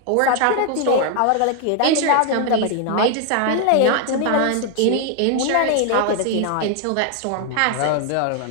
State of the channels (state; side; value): different; both; correlation 0.00